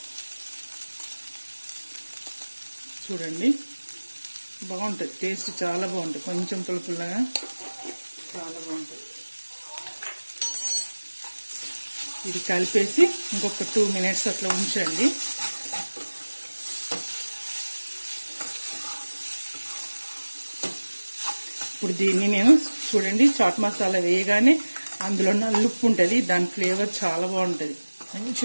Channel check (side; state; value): both; inverted; correlation -1.00